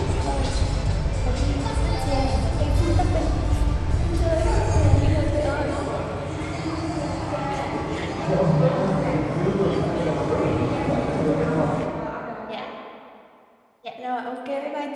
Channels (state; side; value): identical; both; correlation 1.00